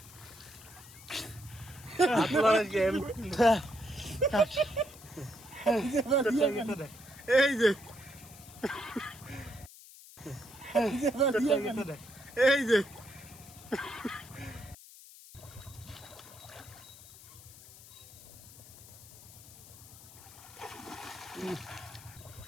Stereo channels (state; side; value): noise; left; hiss, 19 dB below the sound